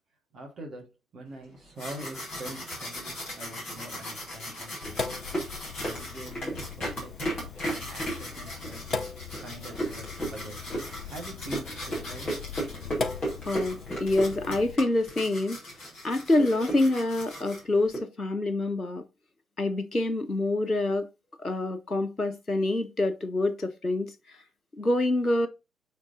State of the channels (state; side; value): normal; both; correlation 0.86